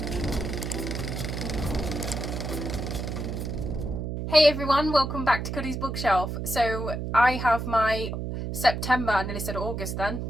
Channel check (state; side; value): noise; right; hum, 4 dB below the sound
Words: Hey everyone, welcome back to Cuddy's Bookshelf. So I have my September, I nearly said August then.